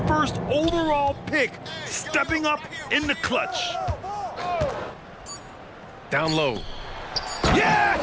first overall pick stepping up in the clutch. Down low. Yeah!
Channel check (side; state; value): both; identical; correlation 1.00